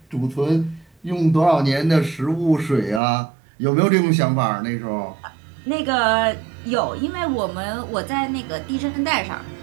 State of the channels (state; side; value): drops out; left; at 3.0 s